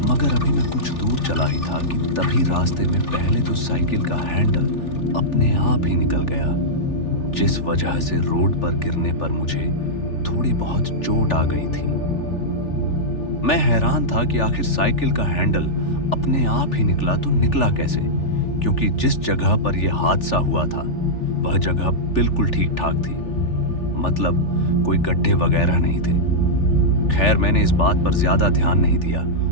मगर अभी मैं कुछ दूर चला ही था कि तभी रास्ते में पहले तो साइकिल का हैंडल अपने आप ही निकल गया, जिस वजह से रोड पर गिरने पर मुझे थोड़ी बहुत चोट आ गई थी। मैं हैरान था कि आखिर साइकिल का हैंडल अपने आप ही निकला तो निकला कैसे, क्योंकि जिस जगह पर यह हादसा हुआ था वह जगह बिल्कुल ठीक ठाक थी, मतलब कोई गड्ढे वगैरह नहीं थे। खैर, मैंने इस बात पर ज्यादा ध्यान नहीं दिया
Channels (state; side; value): late; right; 3.4 ms